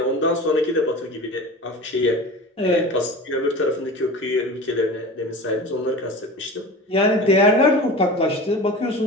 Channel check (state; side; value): normal; both; correlation 0.33